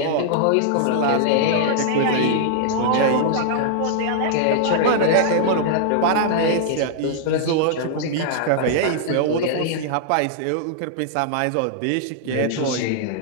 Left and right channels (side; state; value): both; different; correlation -0.01